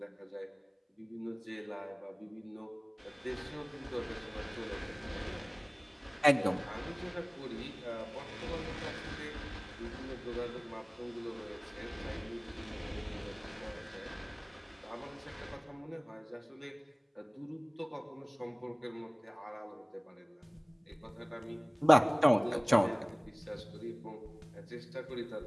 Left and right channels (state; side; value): identical; both; correlation 1.00